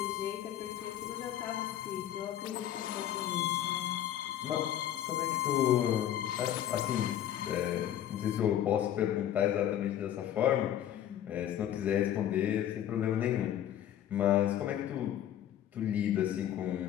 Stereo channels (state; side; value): quieter; right; 11.2 dB